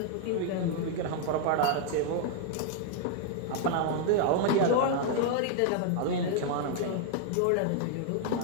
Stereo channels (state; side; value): different; both; correlation 0.00